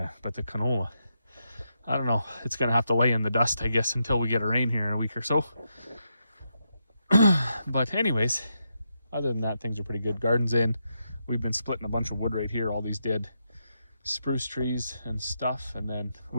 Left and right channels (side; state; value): both; inverted; correlation -0.83